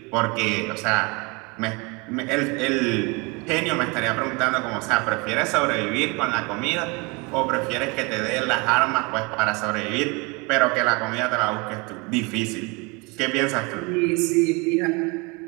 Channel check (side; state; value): left; quieter; 28.3 dB